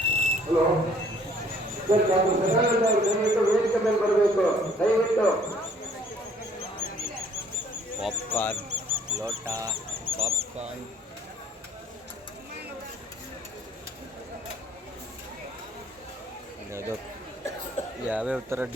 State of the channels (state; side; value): normal; both; correlation 0.59